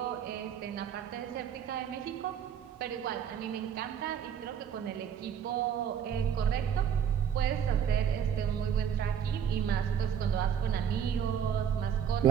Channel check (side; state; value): left; quieter; 8.4 dB